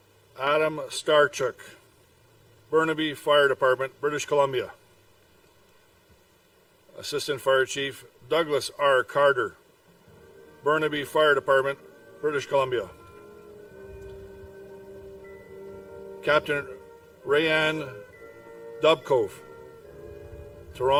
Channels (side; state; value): both; identical; correlation 1.00